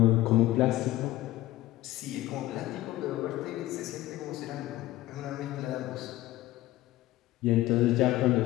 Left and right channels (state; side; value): quieter; right; 16.3 dB